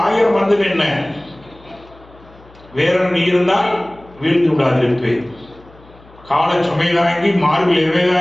வந்து என்ன வேற நீ இருந்தால் வீழ்ந்து விடாதிருப்பேன். கால சுமை தாங்கி மார்பில் எவை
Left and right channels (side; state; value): left; noise; hum, 25 dB below the sound